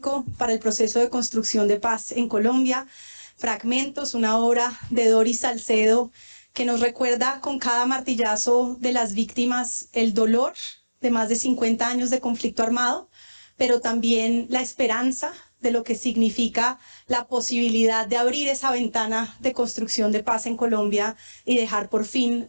para el proceso de construcción de paz en Colombia. Fragmentos, una obra de Doris Salcedo que nos recuerda con cada martillazo de las víctimas el dolor de más de 50 años de conflicto armado, pero también la esperanza de lo que significa la posibilidad de abrir esa ventana de construcción de paz en Colombia y dejar por fin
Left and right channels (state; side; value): inverted; both; correlation -1.00